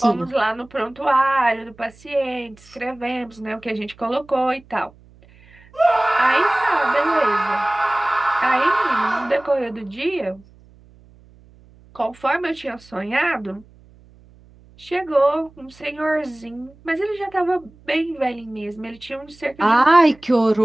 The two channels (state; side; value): noise; right; hum, 26 dB below the sound